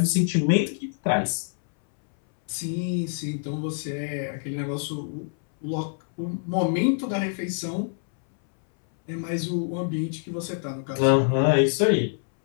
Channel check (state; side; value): silent; right; 61 dB below the other